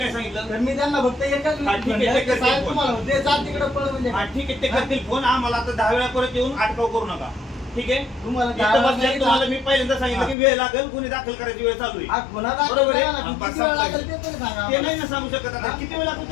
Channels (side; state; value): right; drops out; at 10.4 s